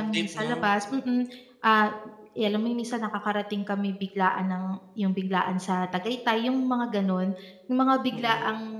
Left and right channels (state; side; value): identical; both; correlation 1.00